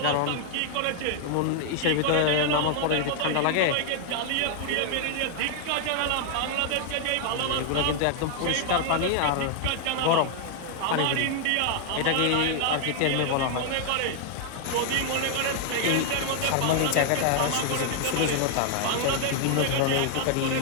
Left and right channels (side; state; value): both; different; correlation 0.00